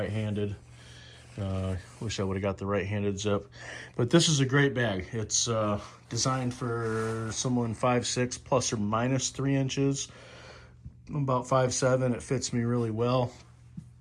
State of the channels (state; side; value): identical; both; correlation 1.00